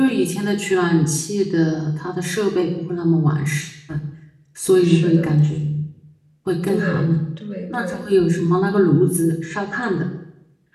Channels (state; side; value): identical; both; correlation 1.00